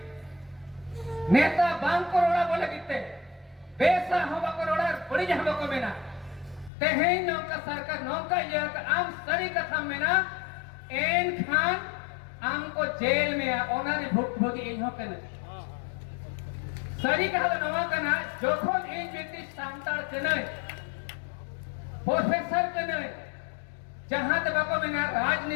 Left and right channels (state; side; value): drops out; right; at 6.7 s